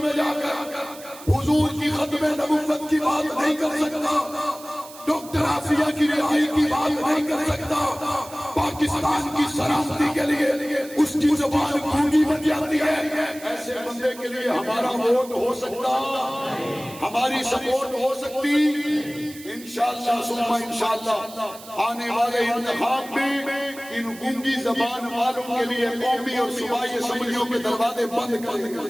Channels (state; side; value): noise; right; hiss, 17 dB below the sound